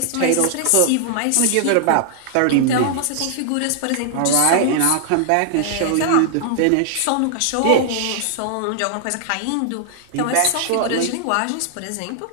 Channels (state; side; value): different; both; correlation 0.00